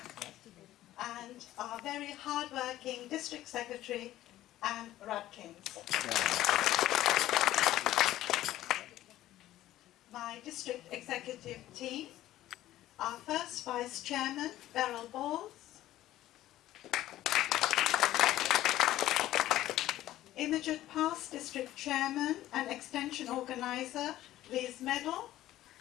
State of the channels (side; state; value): right; quieter; 14.4 dB